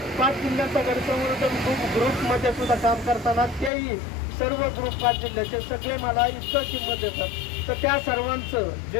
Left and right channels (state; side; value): drops out; right; at 3.7 s